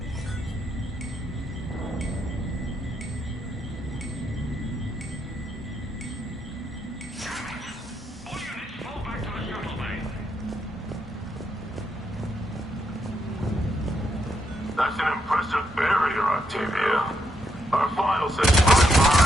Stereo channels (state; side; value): normal; both; correlation 0.79